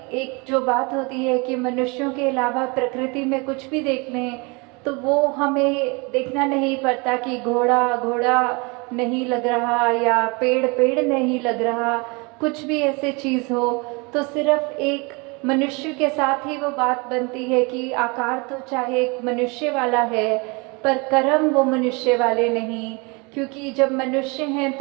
एक जो बात होती है कि मनुष्यों के अलावा प्रकृति में कुछ भी देख लें तो वो हमें देखना नहीं पड़ता कि घोड़ा घोड़ा नहीं लग रहा या पेड़ पेड़ नहीं लग रहा, कुछ भी ऐसे चीज़ हो तो सिर्फ एक मनुष्य के साथ ही वो बात बनती है कि आकार तो चाहे एक मनुष्य वाला है पर कर्म वो मनुष्य वाले नहीं, क्योंकि जब मनुष्य हैं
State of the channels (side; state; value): left; quieter; 28.9 dB